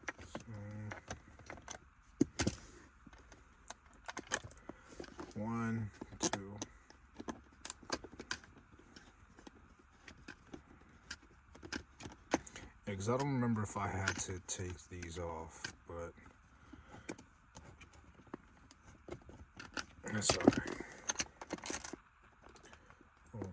One, two. Yeah, because I don't remember if I had to take these off, but that's alright. It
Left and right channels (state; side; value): identical; both; correlation 1.00